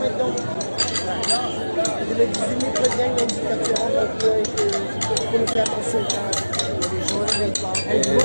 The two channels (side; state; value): both; inverted; correlation -1.00